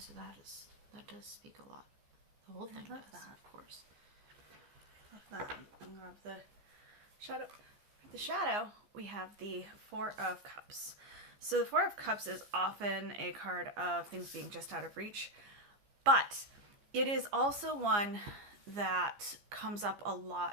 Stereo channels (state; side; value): late; left; 15 ms